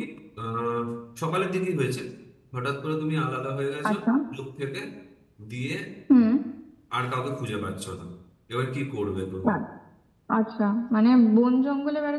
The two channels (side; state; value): both; identical; correlation 1.00